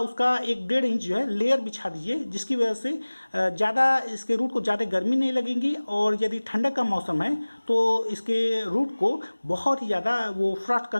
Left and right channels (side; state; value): both; inverted; correlation -1.00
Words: 1-1.5 इंच जो है लेयर बिछा दीजिए, जिसकी वजह से ज़्यादा इसके रूट को ज़्यादा गर्मी नहीं लगेगी। और यदि ठंडक का मौसम है तो इसके रूट को बहुत ही ज़्यादा वो फ्रॉस्ट